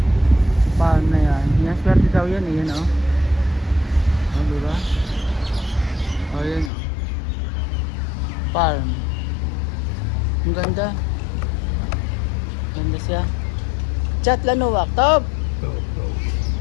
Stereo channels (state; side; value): drops out; right; at 6.7 s